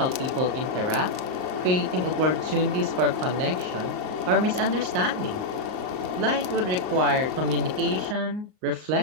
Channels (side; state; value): left; late; 38 ms